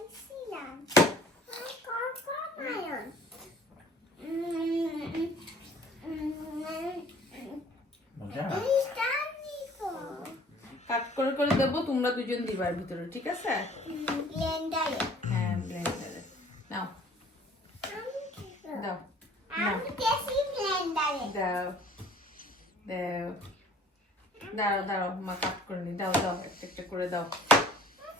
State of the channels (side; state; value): both; normal; correlation 0.53